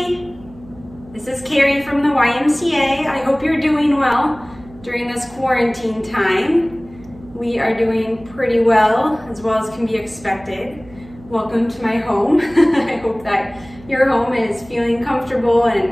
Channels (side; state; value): right; noise; hum, 21 dB below the sound